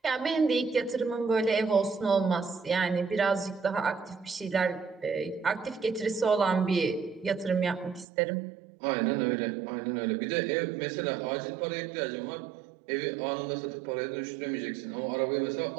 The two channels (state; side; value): drops out; left; at 8.1 s